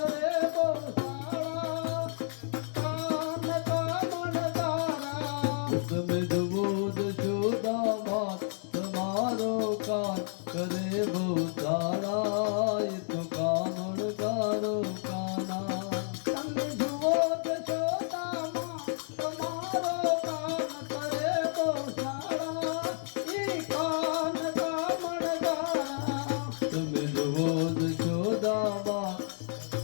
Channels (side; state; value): right; silent; digital silence